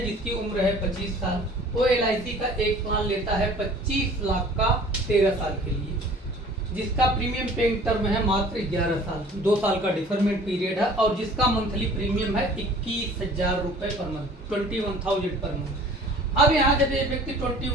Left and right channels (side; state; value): both; normal; correlation 0.49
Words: जिसकी उम्र है 25 साल, वो एलआईसी का एक प्लान लेता है 25 लाख का 13 साल के लिए, जिसका प्रीमियम पेइंग टर्म है मात्र 11 साल, 2 साल का डिफरमेंट पीरियड है और जिसका मंथली प्रीमियम है 21,000 रुपये पर मंथ, 21,000 पर मंथ। अब यहाँ जब ये व्यक्ति